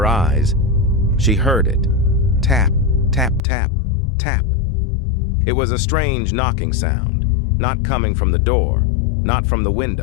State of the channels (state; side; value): drops out; right; at 3.4 s